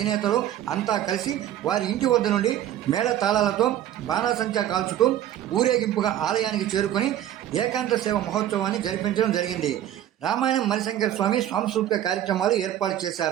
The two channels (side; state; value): left; quieter; 11.8 dB